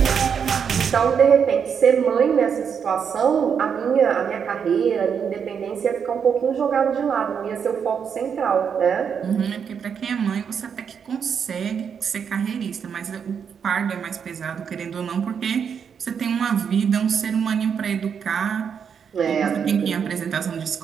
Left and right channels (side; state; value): left; quieter; 7.1 dB